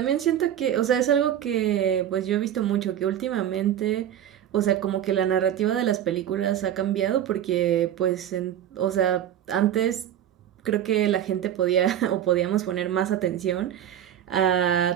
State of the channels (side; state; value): left; quieter; 10.6 dB